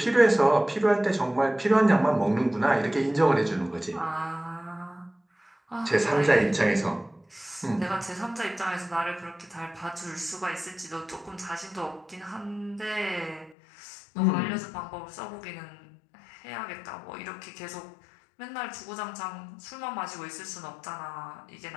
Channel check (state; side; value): drops out; right; at 13.6 s